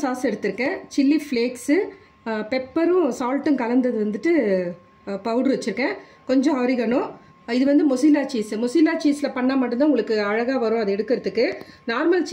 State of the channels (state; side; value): identical; both; correlation 1.00